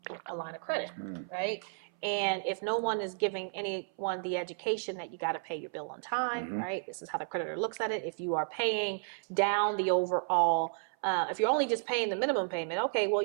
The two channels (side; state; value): left; silent; 56 dB below the other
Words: line of credit, right? And if no one is giving anyone the education that you got to pay your bill on time, right? This is how the creditor looks at it. If you are paying down the overall, if you're only just paying the minimum payment, okay, well,